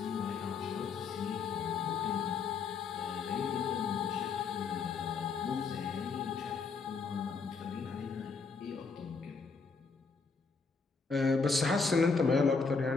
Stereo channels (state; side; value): quieter; right; 4.8 dB